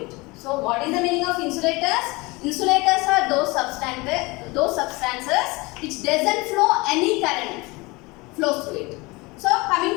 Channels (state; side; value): quieter; right; 24.2 dB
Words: it. So what is the meaning of insulators? Insulators are those substances which doesn't flow any current flows through it. So coming